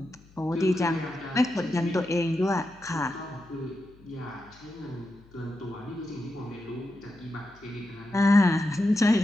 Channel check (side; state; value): left; noise; hum, 26 dB below the sound